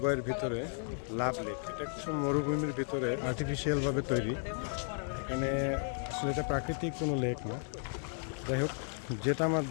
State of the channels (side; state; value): right; silent; 55 dB below the other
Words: ভিতরে লাভ লেক। এটা কিছু মরুভূমির ভিতরে আর্টিফিশিয়াল ভাবে তৈরি। এখানে আসলে এটা প্রাকৃতিক কোনো লেক না। যাই হোক, যেটা আমার